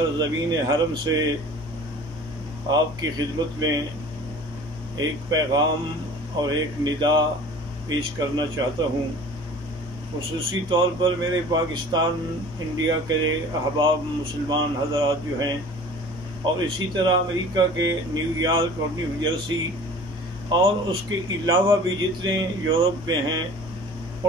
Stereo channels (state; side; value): normal; both; correlation 0.44